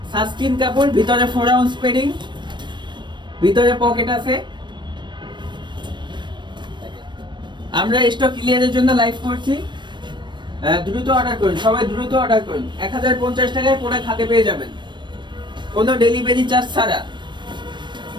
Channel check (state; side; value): late; left; 0.22 ms